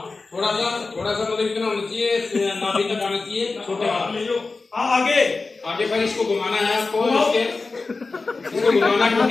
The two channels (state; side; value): quieter; right; 3.9 dB